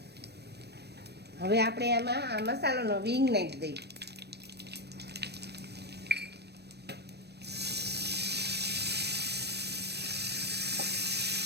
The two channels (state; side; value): late; left; 0.48 ms